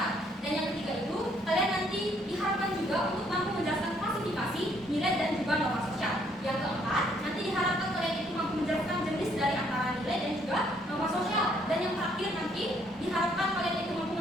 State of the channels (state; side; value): normal; both; correlation 0.67